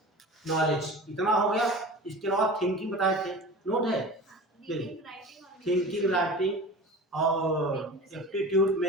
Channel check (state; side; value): normal; both; correlation 0.36